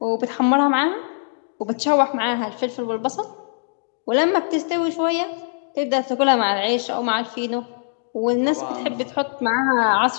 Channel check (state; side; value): silent; right; digital silence